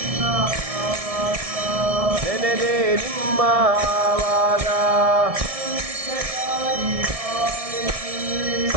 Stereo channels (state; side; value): late; left; 1.6 ms